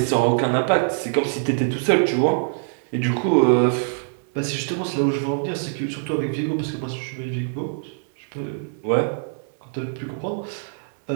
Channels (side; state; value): left; silent; digital silence